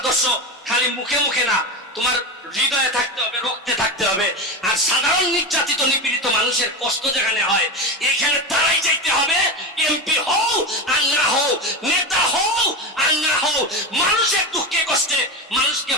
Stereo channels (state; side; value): normal; both; correlation 0.20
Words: খালি মুখে মুখে না, তোমার হৃদয়ে থাকতে হবে, রক্তে থাকতে হবে। আর সাধারণ নির্যাতিত নিপীড়িত মানুষের কষ্ট যেখানে হয়, এখানে তারাই যাইতে হবে। এমপি হও আর না হও, নেতা হও আর না হও, মানুষের দুঃখে কষ্টে মানুষকে